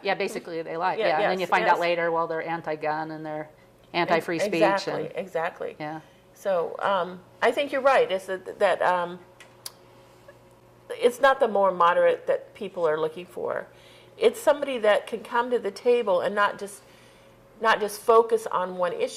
Basically, they lie. And then you find out later, well, they're anti-gun and they're anti-free speech. Exactly. Yeah. So I think you're right. It's that it's not the more moderate that people are looking for. It's somebody that can come to the table and not just focus on one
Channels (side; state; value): both; identical; correlation 1.00